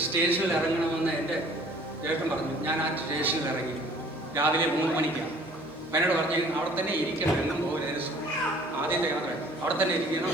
സ്റ്റേഷനിൽ ഇറങ്ങണമെന്ന് എൻ്റെ ചേട്ടൻ പറഞ്ഞു. ഞാൻ ആ സ്റ്റേഷനിൽ ഇറങ്ങി. രാവിലെ 3 മണിക്കാണ്. എന്നോട് പറഞ്ഞു, അവിടെ തന്നെ ഇരിക്കണം, എങ്ങും പോകരുത്. ആദ്യത്തെ യാത്ര അവിടെ തന്നെ ഇരിക്കണം.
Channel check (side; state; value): right; noise; hum, 28 dB below the sound